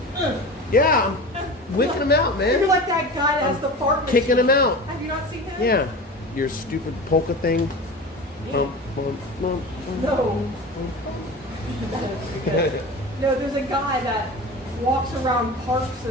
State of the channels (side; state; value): both; normal; correlation 0.32